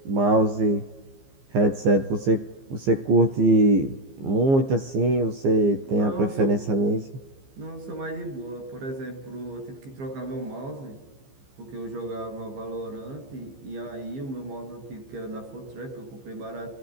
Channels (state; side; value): late; left; 15 ms